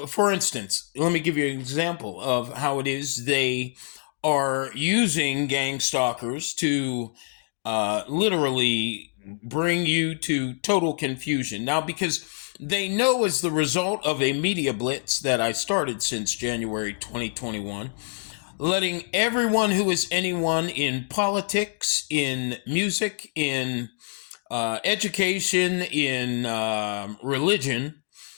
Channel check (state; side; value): silent; right; 59 dB below the other